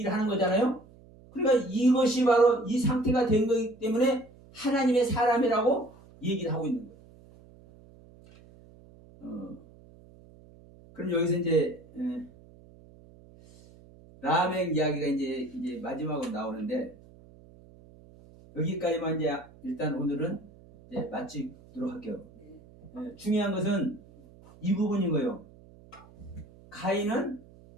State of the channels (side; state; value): right; noise; hum, 24 dB below the sound